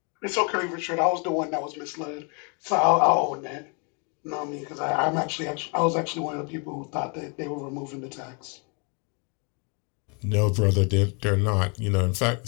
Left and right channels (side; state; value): right; quieter; 35.1 dB